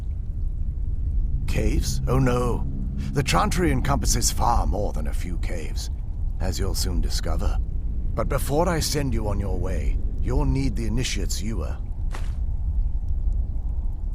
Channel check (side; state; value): both; identical; correlation 1.00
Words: Caves? Oh no. The Chantry encompasses far more than a few caves, as you'll soon discover. But before I send you on your way, you'll need the Initiate's ewer.